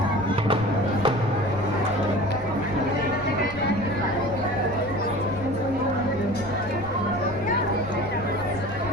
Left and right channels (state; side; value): noise; left; rumble, 13 dB below the sound